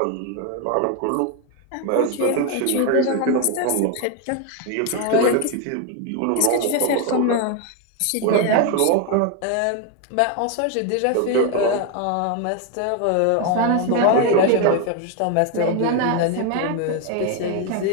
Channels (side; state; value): both; different; correlation 0.01